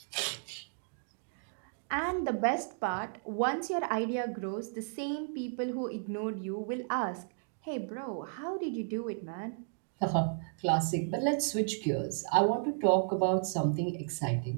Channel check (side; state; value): left; silent; digital silence